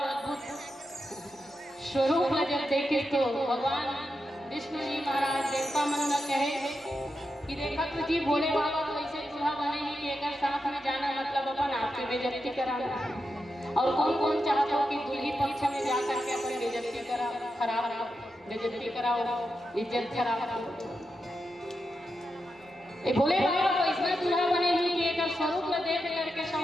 अद्भुत स्वरूप जब देखे तो भगवान विष्णु जी महाराज देवता मन न कहे कि देखा तो जी भोले बाबा तो ऐसे दूल्हा बने ही कि एक साथ में जाना मतलब अपन आपकी बेइज्जती कराना, और कौन कौन चाहता हो कि दूल्ही पक्ष में जाकर के अपन बेइज्जती करा, खराब बेइज्जती कराओ, इज्जत खराब। ये भोले बाबा को इसमें दूल्हा बने ही कि एक स्वरूप में देख करके सब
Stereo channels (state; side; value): normal; both; correlation 0.87